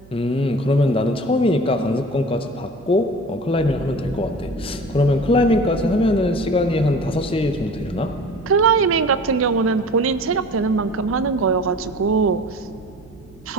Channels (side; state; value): right; noise; hum, 25 dB below the sound